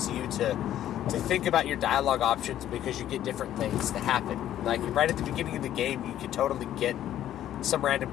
you to think about your dialogue options, because you get different things to happen. Like right at the beginning of the game, you could totally get some random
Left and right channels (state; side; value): quieter; right; 11.9 dB